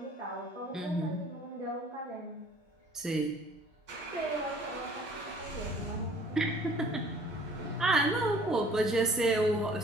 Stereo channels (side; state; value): both; normal; correlation 0.53